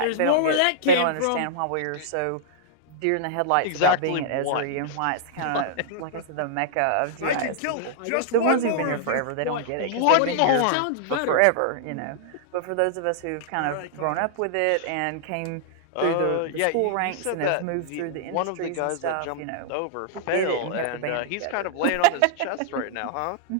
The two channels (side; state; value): both; different; correlation -0.01